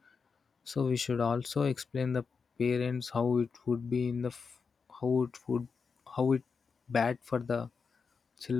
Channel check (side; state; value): right; quieter; 5.4 dB